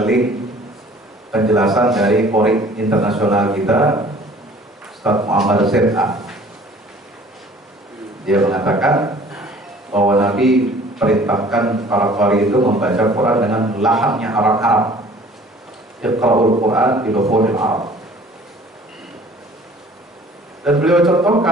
link penjelasan dari Qori internasional kita, Ustaz Muhammad Z.A. Dia mengatakan bahwa Nabi perintahkan para Qori itu membaca Quran dengan lahannya Arab-Arab. Iqra'ul Quran bi lughil Arab. Dan beliau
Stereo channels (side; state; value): both; normal; correlation 0.51